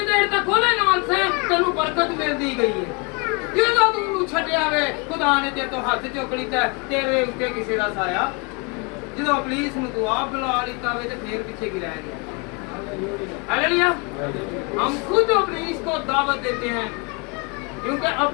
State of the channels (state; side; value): quieter; right; 31.9 dB